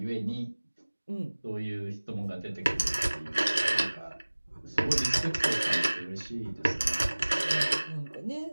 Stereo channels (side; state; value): both; inverted; correlation -1.00